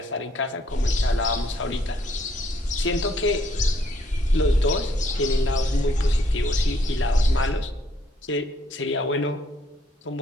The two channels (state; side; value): normal; both; correlation 0.68